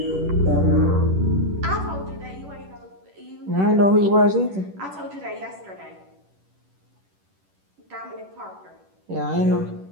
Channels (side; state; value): left; late; 10 ms